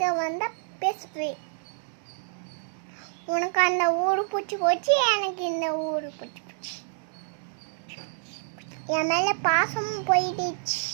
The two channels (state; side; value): silent; left; digital silence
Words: வந்தா பேசுவேன். உனக்கு அந்த ஊரு பிடிச்சி போச்சு, எனக்கு இந்த ஊரு பிடிச்சி போச்சு. என் மேல பாசமும் போயிடுச்சு.